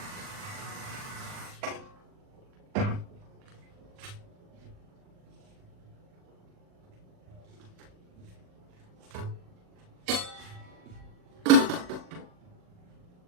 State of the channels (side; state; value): left; late; 39 ms